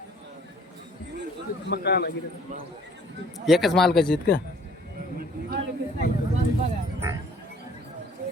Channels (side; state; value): both; normal; correlation 0.56